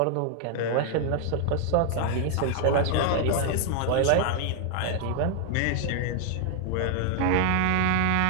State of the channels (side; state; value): both; different; correlation 0.00